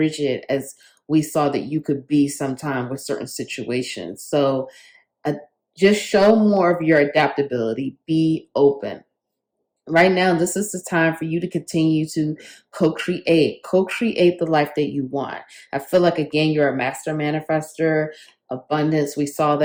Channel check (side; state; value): both; identical; correlation 1.00